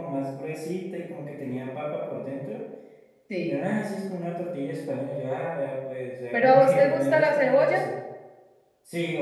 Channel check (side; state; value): both; identical; correlation 1.00